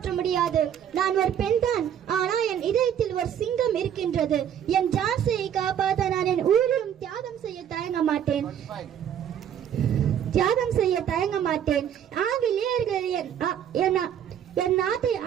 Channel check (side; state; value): left; quieter; 9.4 dB